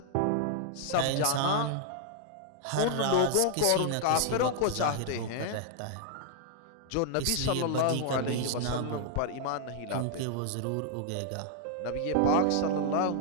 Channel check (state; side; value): different; both; correlation 0.00